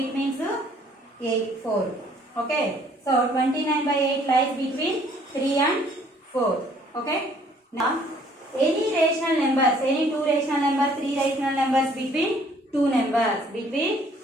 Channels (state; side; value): normal; both; correlation 0.60